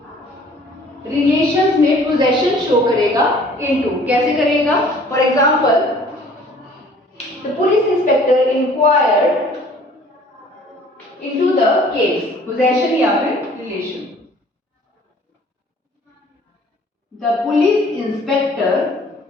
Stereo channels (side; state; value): both; normal; correlation 0.53